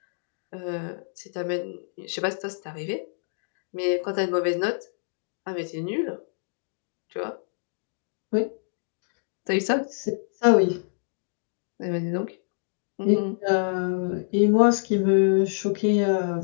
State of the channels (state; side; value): silent; right; digital silence